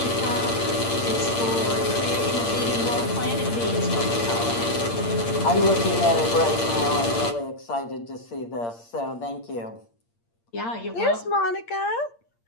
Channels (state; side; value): late; right; 8.7 ms